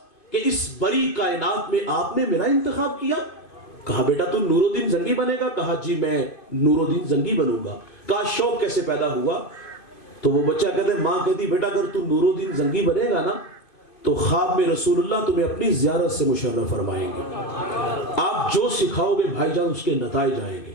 کہ اس بڑی کائنات میں آپ نے میرا انتخاب کیا. کہا بیٹا تو نور الدین زنگی بنے گا؟ کہا جی میں نور الدین زنگی بنوں گا. کہا شوق کیسے پیدا ہوا؟ تو وہ بچہ کہتا ہے, ماں کہتی بیٹا اگر تو نور الدین زنگی بنے گا نا تو خواب میں رسول اللہ تمہیں اپنی زیارت سے مشرف فرمائیں گے. آپ جو سکھاؤ گے بھائی جان اس کے نتائج آئیں گے.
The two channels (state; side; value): late; right; 2.5 ms